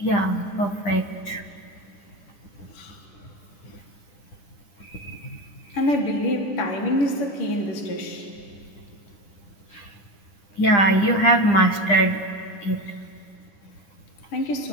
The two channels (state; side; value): late; right; 10 ms